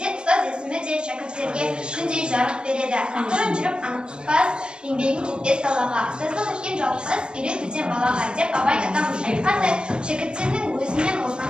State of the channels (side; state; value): left; late; 0.050 ms